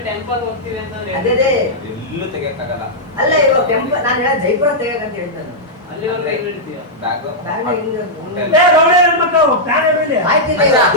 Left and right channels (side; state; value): both; normal; correlation -0.08